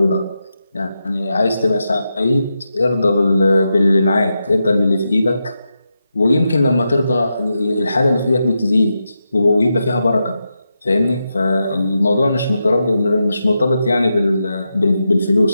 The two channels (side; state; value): both; inverted; correlation -0.87